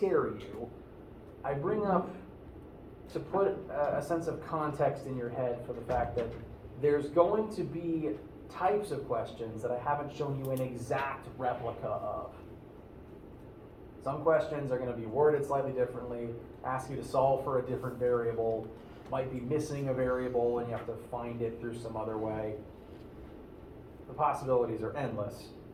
you. I bring up to put a sense of context in your head for the fact that there's going to be types of questions that I haven't shown you an exact replica of. Some questions are going to be worded slightly differently, ask you to solve for a different variable, might be missing a variable and you have to find it through some other way. The possibilities are endless.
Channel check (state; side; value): identical; both; correlation 1.00